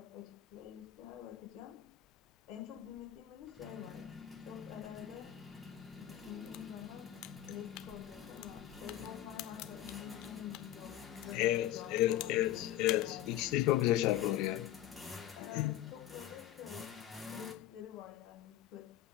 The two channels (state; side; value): quieter; right; 13.1 dB